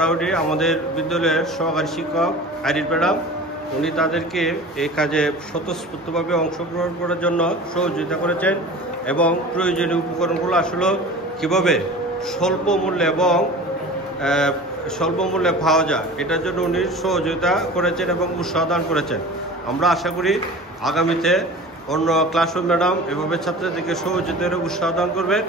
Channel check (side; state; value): both; normal; correlation 0.38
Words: আমাদের বিদ্যালয়ের সহকারী শিক্ষক আইরিন ম্যাডাম, উনি তাদেরকে এই কাজে স্বতঃস্ফূর্তভাবে অংশগ্রহণ করার জন্য সহযোগিতা করেছেন এবং প্রয়োজনীয় উপকরণগুলো আসলে কীভাবে স্বল্প মূল্যে পাওয়া যায় এটার জন্য উনি সহযোগিতা করেছেন এবং উৎসাহ দান করেছেন। আমরা আশা করি আগামীতে অন্য ক্লাসরুম ম্যাডাম এভাবে ছাত্রীদেরকে সহযোগিতার উৎসাহ দান করবেন